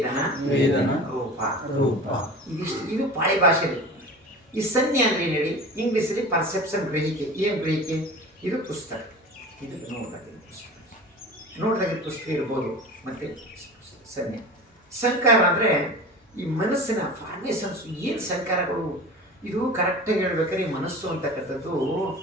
ರೂಪ. ಇದಿಷ್ಟು, ಇದು ಪಾಳಿ ಭಾಷೆಯಲ್ಲಿ. ಈ ಸಂಜ್ಞೆ ಅಂದರೆ ಏನು ಹೇಳಿ, ಇಂಗ್ಲೀಷಲ್ಲಿ ಪರ್ಸೆಪ್ಷನ್, ಗ್ರಹಿಕೆ. ಏನು ಗ್ರಹಿಕೆ? ಇದು ಪುಸ್ತಕ, ಇದು ನೋಡಿದಾಗಿದ್ದ ಪುಸ್ತಕ ಇರ್ಬೋದು. ಮತ್ತು ಸಂಜ್ಞೆ. ಸಂಕಾರ ಅಂದರೆ ಈ ಮನಸ್ಸಿನ ಫಾರ್ಮೇಷನ್ಸು. ಏನು ಸಂಕಾರಗಳು? ಇದು ಕರೆಕ್ಟಾಗಿ ಹೇಳ್ಬೇಕಾದ್ರೆ ಈ ಮನಸ್ಸು ಅಂತಕ್ಕಂಥದ್ದು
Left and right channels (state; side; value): normal; both; correlation 0.35